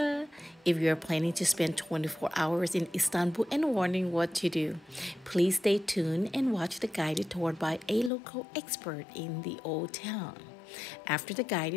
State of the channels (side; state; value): right; drops out; at 8.1 s